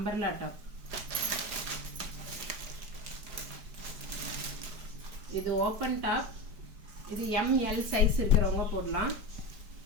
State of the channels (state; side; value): late; left; 4.9 ms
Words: டாப். இது ஓப்பன் டாப். இது எம்எல் சைஸ் இருக்கிறவங்க போடலாம்.